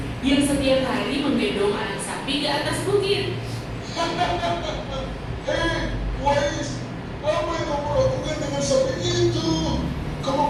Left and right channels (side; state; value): both; identical; correlation 1.00